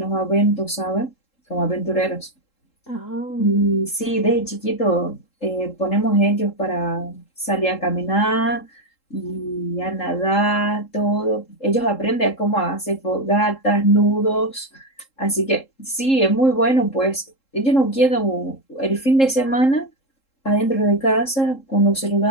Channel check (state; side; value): late; right; 3.7 ms